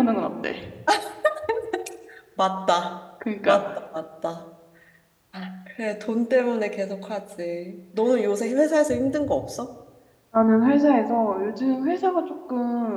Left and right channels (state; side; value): identical; both; correlation 1.00